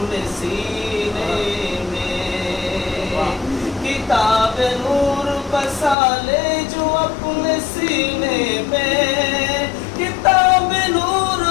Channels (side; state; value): right; drops out; at 6.0 s